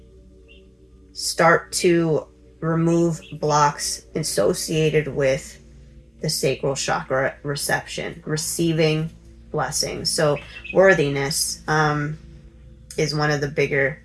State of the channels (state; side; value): identical; both; correlation 1.00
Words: start to remove blocks associated with the sacral chakra reception, receiving blessings. So worthiness is one of the bigger